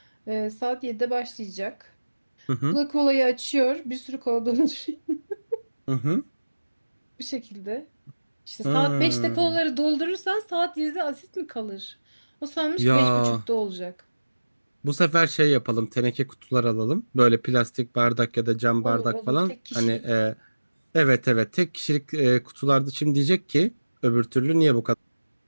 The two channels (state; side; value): inverted; both; correlation -1.00